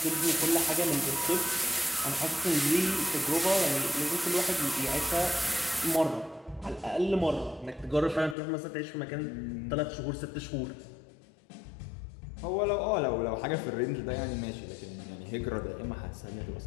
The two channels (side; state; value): right; drops out; at 8.3 s